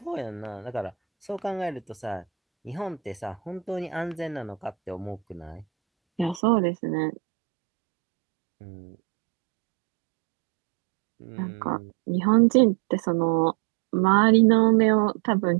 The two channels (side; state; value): left; drops out; at 6.4 s